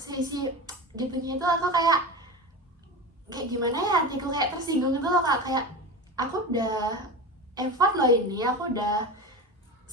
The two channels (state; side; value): normal; both; correlation 0.26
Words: gitunya itu, aku kayak gimana ya, hatiku kayak tersinggung gitu loh kak. Kayak aku udah effort loh ini, aku udah